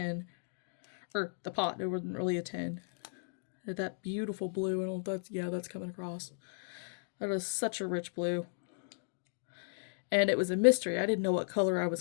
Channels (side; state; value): right; silent; digital silence